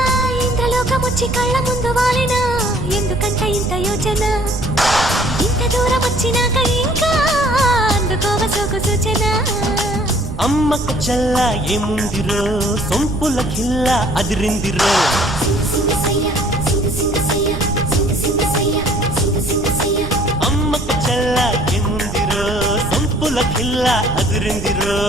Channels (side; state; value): right; noise; rumble, 8 dB below the sound